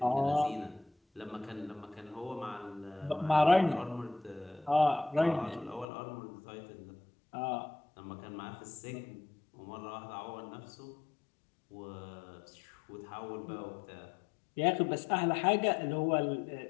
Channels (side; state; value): right; drops out; at 5.9 s